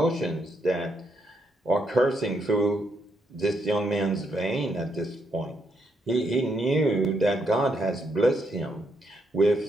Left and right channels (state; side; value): normal; both; correlation 0.77